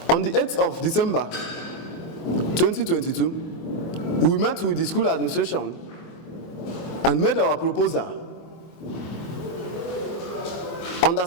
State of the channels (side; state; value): right; late; 24 ms